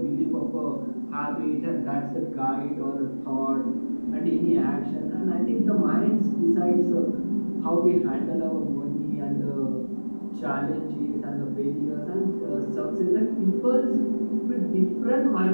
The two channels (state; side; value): inverted; both; correlation -1.00